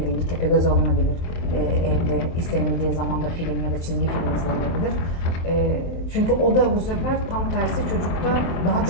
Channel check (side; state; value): right; late; 23 ms